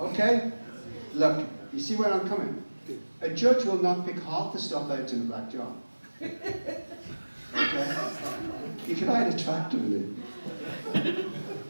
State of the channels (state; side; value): inverted; both; correlation -1.00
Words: Look, you see where I'm coming? A judge will not pick half the stuff out in the black jar. Okay? You can hide a tractor in it.